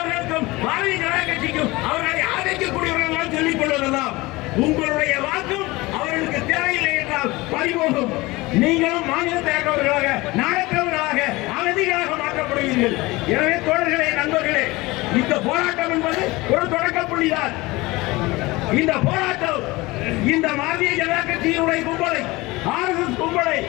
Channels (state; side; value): quieter; right; 21.5 dB